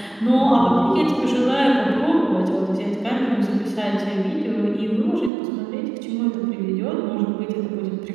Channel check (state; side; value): drops out; left; at 5.3 s